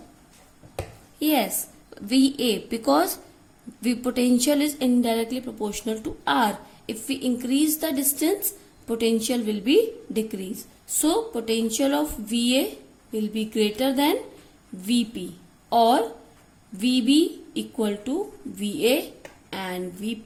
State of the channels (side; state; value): both; identical; correlation 1.00